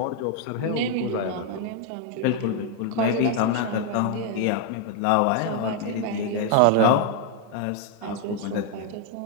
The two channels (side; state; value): both; different; correlation 0.00